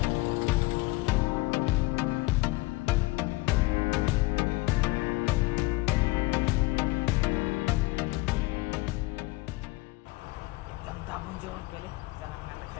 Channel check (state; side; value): quieter; right; 21.3 dB